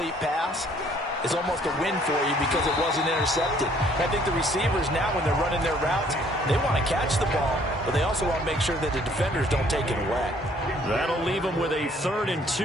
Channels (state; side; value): normal; both; correlation 0.61